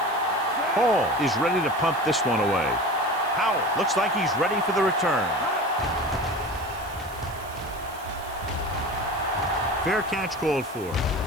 Hall is ready to pump this one away. Howell looks like he's ready for the return. Fair catch called for.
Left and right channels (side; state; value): right; noise; hiss, 19 dB below the sound